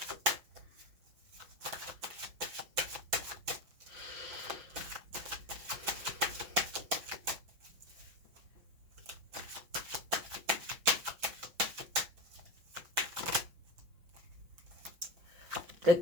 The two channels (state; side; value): late; left; 6.0 ms